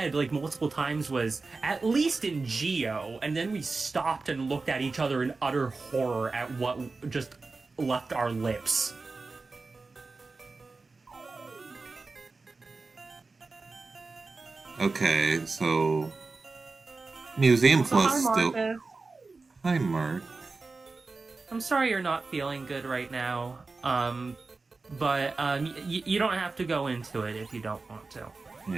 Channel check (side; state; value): left; quieter; 3.9 dB